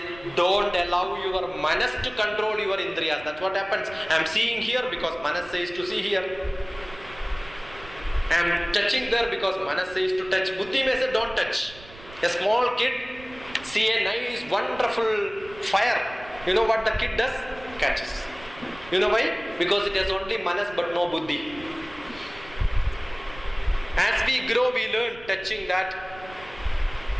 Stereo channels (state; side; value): noise; right; rumble, 20 dB below the sound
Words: don't allow your Manas to control your Indriyas. That's what happens. I am seeing here because Manas says to see here. I am touching there because Manas says to touch. Buddhi may say don't touch. A small kid see a nice wonderful fire. You know what the kid does? Catches. You know why? Because it has only Manas but no Buddhi. As we grow, we learn touching that